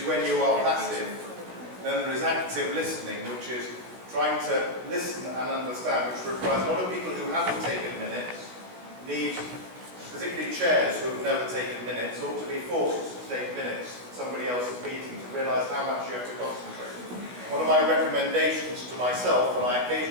when you are passive, then there is active listening, which is trying to listen and understand, which requires a lot of people who haven't taken minutes, need, particularly chairs who have never taken minutes, ought to be forced to take minutes at somebody else's meeting to realise how much you have to concentrate. One of my recommendations to myself, and I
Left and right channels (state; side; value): late; left; 17 ms